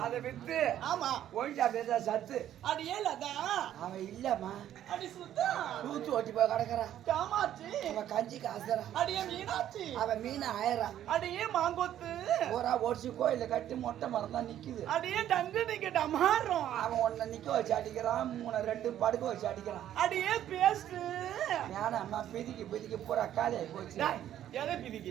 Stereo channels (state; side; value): quieter; left; 11.4 dB